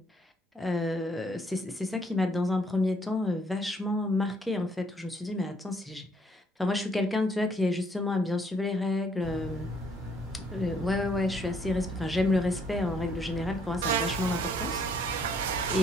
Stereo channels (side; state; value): both; normal; correlation 0.66